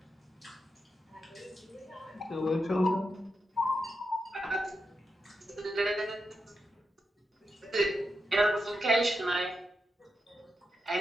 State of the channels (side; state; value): both; normal; correlation 0.87